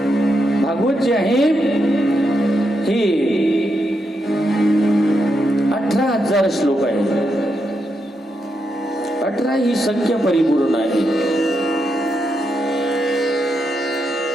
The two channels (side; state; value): both; normal; correlation 0.83